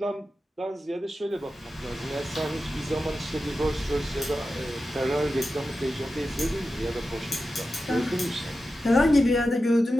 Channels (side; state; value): both; normal; correlation 0.92